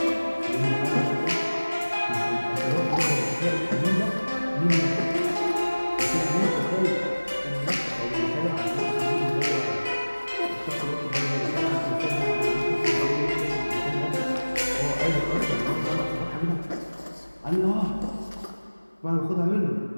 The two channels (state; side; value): inverted; both; correlation -1.00